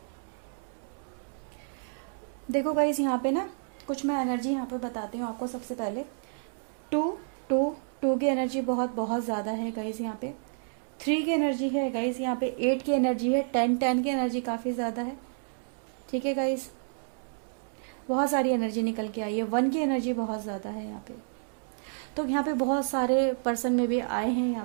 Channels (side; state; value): left; silent; digital silence